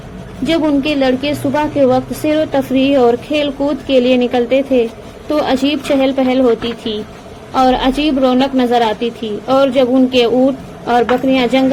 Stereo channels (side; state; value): both; identical; correlation 1.00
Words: جب ان کے لڑکے صبح کے وقت سیر و تفریح اور کھیل کود کے لیے نکلتے تھے تو عجیب چہل پہل ہوتی تھی اور عجیب رونق نظر آتی تھی، اور جب ان کے اونٹ اور بکریاں